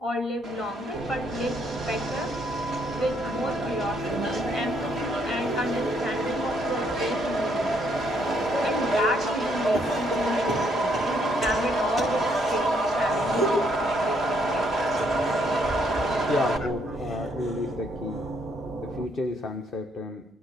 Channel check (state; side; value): normal; both; correlation 0.71